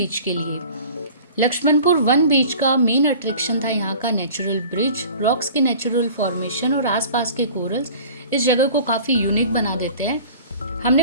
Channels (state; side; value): inverted; both; correlation -0.44